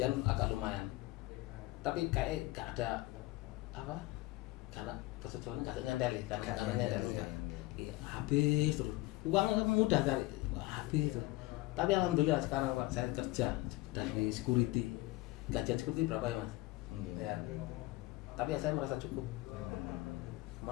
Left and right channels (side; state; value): right; quieter; 19.6 dB